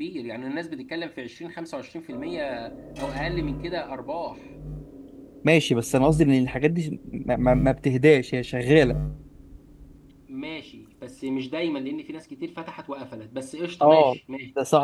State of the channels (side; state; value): both; identical; correlation 1.00